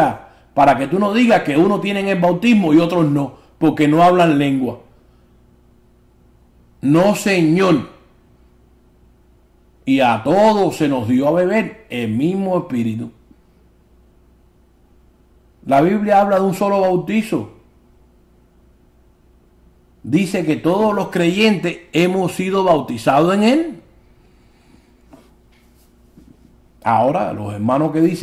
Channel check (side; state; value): both; identical; correlation 1.00